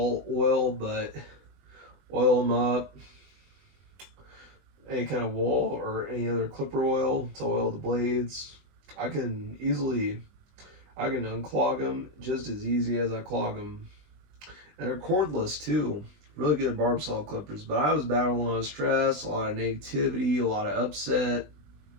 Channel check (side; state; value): left; late; 20 ms